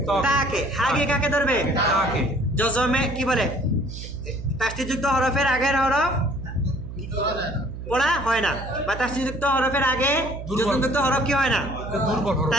তাকে হাগে কাকে ধরবে জজমে কি বলে তাসদীদযুক্ত হরফের আগের হরফ পড়া হয় না বা তাসদীদযুক্ত হরফের আগে জজমযুক্ত হরফ কি হয় না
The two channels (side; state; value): right; noise; hum, 10 dB below the sound